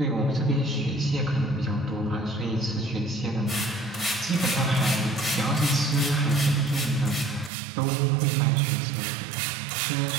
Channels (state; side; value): drops out; left; at 7.5 s